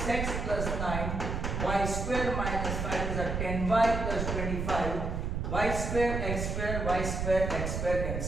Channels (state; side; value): noise; right; rumble, 2 dB below the sound